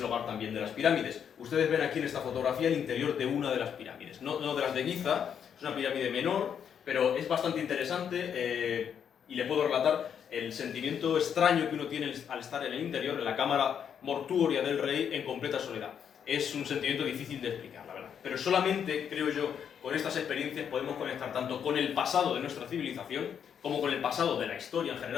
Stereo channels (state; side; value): quieter; right; 8.1 dB